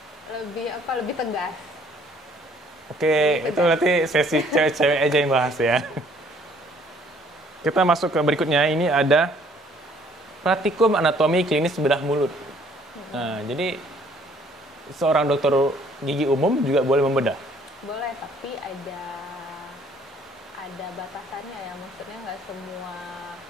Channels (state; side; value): normal; both; correlation 0.60